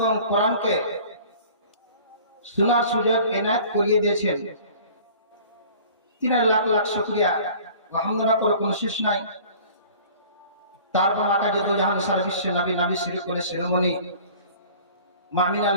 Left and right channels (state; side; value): inverted; both; correlation -0.47